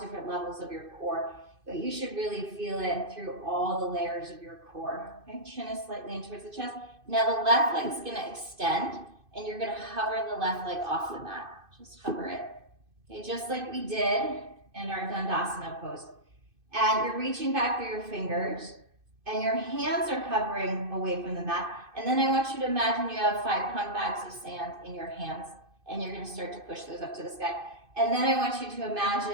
different levels of your core, but you should really feel it through all the layers of your core. Okay, chin is slightly in towards the chest. Now the left leg is gonna extend and you're gonna hover the left leg off the mat. Just hover it. Okay, just like we did in our Uttanasana pose. And you're reaching back through your fingers and your hands are hovering away from the mat. And then I want you to imagine you have 5-pound bags of sand in your hands and you're gonna start to push those up to the sky. And then I want you to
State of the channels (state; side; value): late; left; 2.5 ms